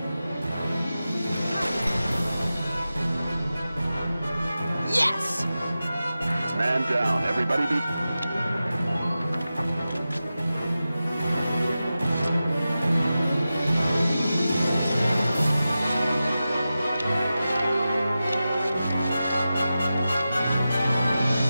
Yes! Man down. Everybody be...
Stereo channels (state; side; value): inverted; both; correlation -0.93